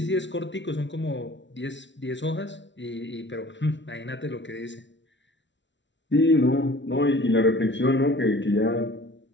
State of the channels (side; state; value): right; late; 0.53 ms